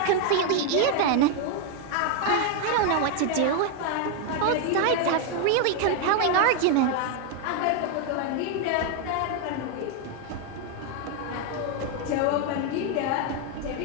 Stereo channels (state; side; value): different; both; correlation 0.01